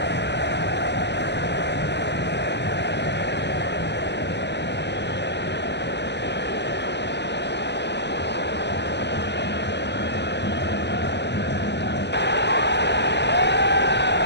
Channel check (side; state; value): right; late; 0.50 ms